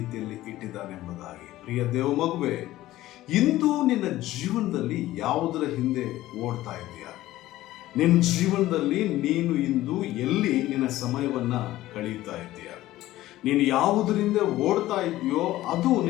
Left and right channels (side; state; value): right; quieter; 15.7 dB